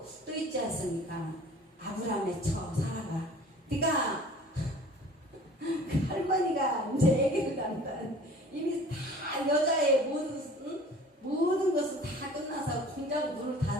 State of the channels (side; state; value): both; normal; correlation 0.46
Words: 있지 않습니까? 아브라함의 처 사라가 네가 그 할머니가 이제 애기를 낳는다. 이미 다 여자의 모든 것은 다 끝나서 공장 문을